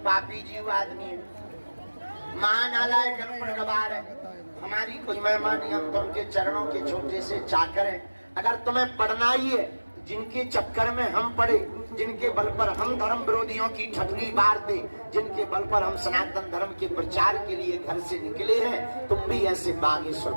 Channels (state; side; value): inverted; both; correlation -1.00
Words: पापी जीव आदमी है, महानालायक अनपढ़ गवार है। हमारी कोई महिमा नहीं, हम तो उनके चरणों के छोटे से चाकर हैं। अगर तुम्हें पढ़ना ही है, जिनके चक्कर में हम पड़े, जिनके बल पर हम धर्म विरोधियों की ठगनी मारते, जिनके बल पर हम सनातन धर्म के प्रचार के लिए घर से निकले हैं, तुम भी ऐसे बागेश्वर